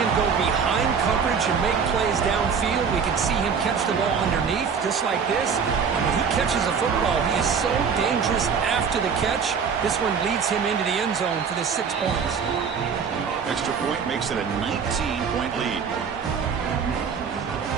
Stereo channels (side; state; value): left; quieter; 6.3 dB